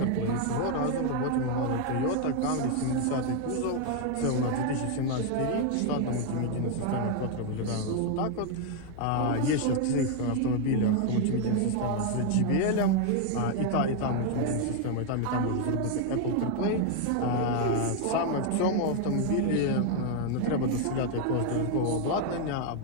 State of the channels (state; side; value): different; both; correlation 0.00